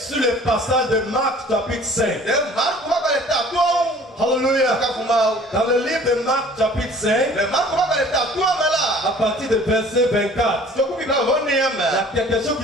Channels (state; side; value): normal; both; correlation 0.50